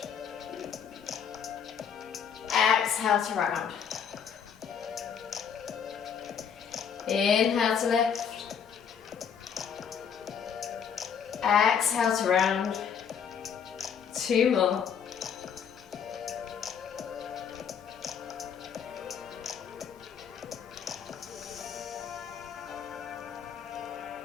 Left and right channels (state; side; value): quieter; right; 7.5 dB